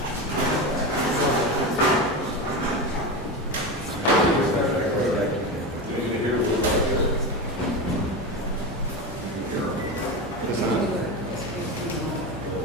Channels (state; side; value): normal; both; correlation 0.20